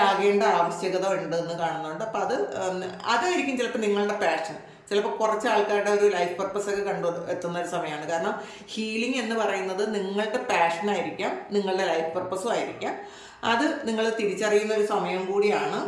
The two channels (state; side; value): identical; both; correlation 1.00